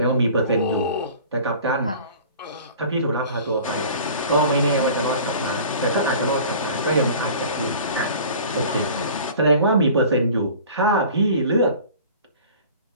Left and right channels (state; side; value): inverted; both; correlation -0.44